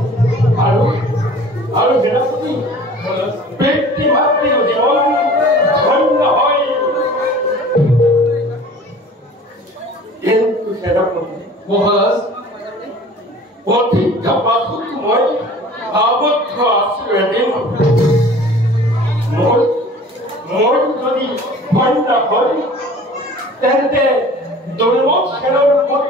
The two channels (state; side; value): normal; both; correlation 0.45